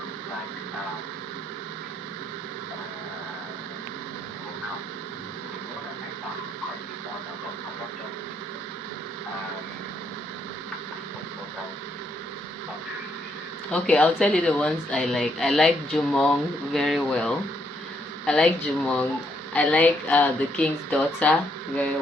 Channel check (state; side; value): normal; both; correlation 0.73